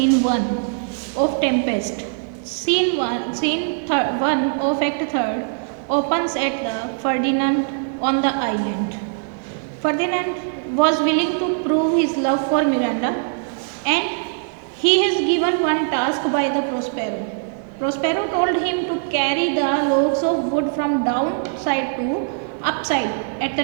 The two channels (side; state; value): left; silent; digital silence